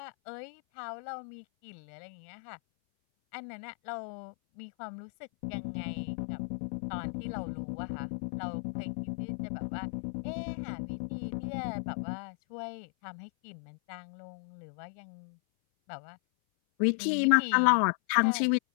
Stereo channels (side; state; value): right; silent; 55 dB below the other